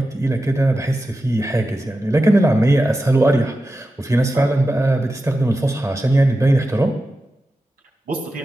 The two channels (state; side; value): normal; both; correlation 0.92